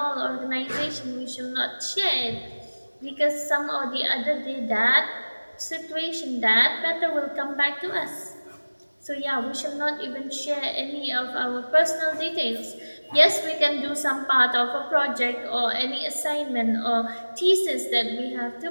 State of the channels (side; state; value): both; inverted; correlation -1.00